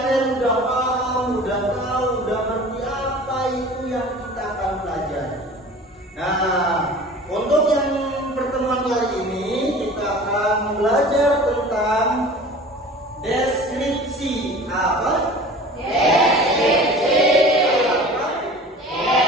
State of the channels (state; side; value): normal; both; correlation 0.41